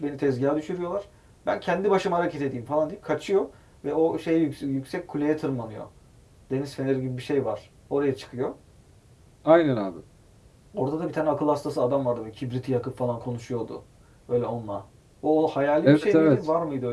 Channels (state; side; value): identical; both; correlation 1.00